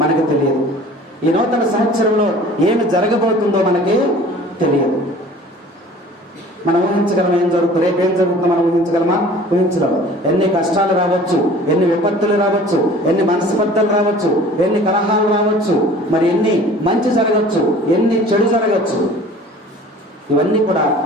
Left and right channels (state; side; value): normal; both; correlation 0.47